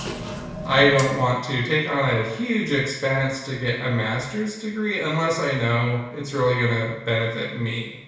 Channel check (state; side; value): identical; both; correlation 1.00